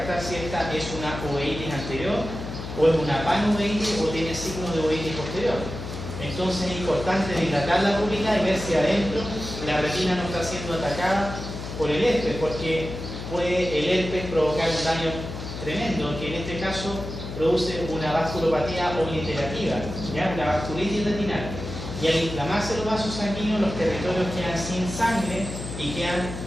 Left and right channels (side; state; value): left; noise; hum, 8 dB below the sound